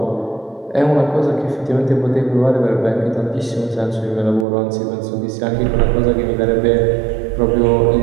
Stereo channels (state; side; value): drops out; left; at 4.5 s